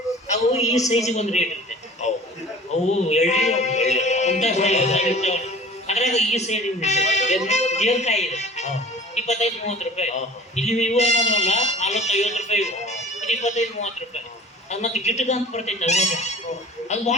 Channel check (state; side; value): normal; both; correlation 0.43